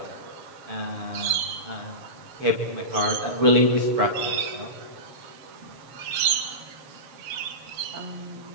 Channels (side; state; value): left; late; 7.6 ms